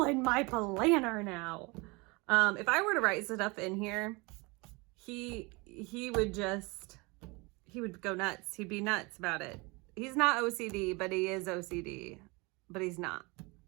my planner now. If I were to write stuff in here, he would go nuts. He'd be nuts about it. He's not OCD, but he is OCD. But he's not.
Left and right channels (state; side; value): quieter; left; 26.6 dB